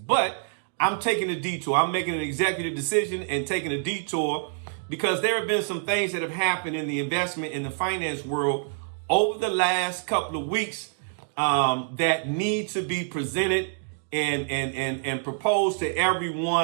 I'm taking a detour. I'm making an executive decision and taking a detour because there have been some things that have happened in the investment in the finance world over the last couple of weeks that need to be presented and proposed to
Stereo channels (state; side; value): silent; left; digital silence